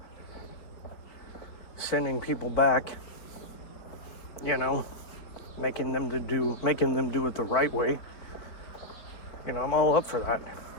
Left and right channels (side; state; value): right; late; 4.6 ms